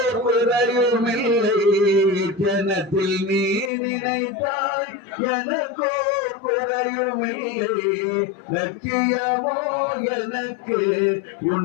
குறையுமில்லை. ஜனத்தில் நீ நினைத்தாய் எனக்கோர் குறையுமில்லை. லட்சியமோ எனக்கு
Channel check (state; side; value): drops out; right; at 3.7 s